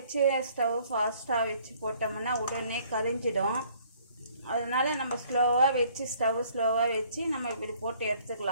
ஸ்டவ் ஃபாஸ்ட்டாக வச்சு போட்டோம்னா உடனே கரிஞ்சிடும். அதனால் நம்ம ஸ்லோவாக வச்சு நம்ம இப்படி போட்டு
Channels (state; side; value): inverted; both; correlation -0.59